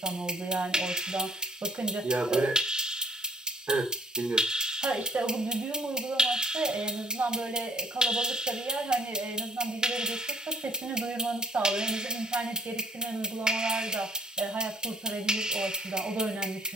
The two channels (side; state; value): both; normal; correlation 0.59